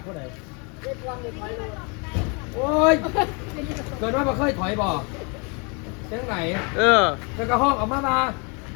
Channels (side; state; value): right; quieter; 33.3 dB